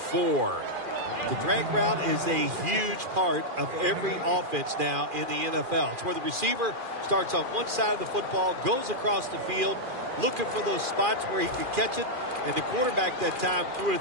The drag route is a huge part of every offense now in the NFL. It's where the receiver starts on one side of the football, goes across the field, looking for those spots where he could catch it, and the quarterback that time threw it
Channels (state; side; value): late; left; 2.4 ms